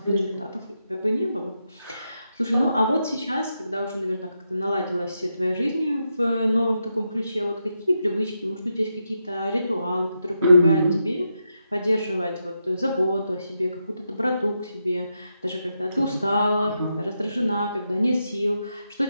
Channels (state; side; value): inverted; both; correlation -0.85